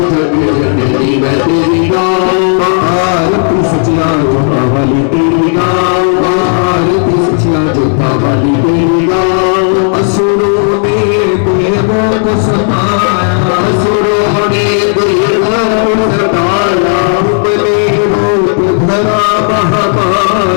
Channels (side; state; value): right; silent; 59 dB below the other